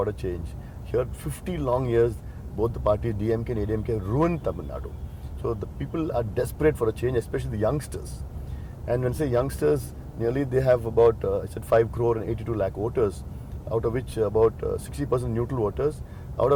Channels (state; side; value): identical; both; correlation 1.00